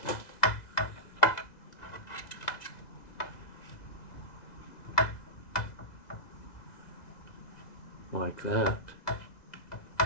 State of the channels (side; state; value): right; late; 2.0 ms